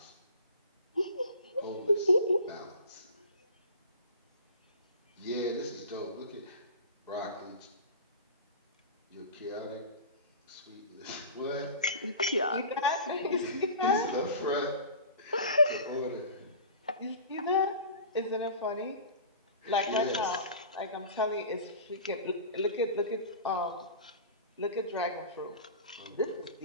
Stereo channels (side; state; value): both; inverted; correlation -0.36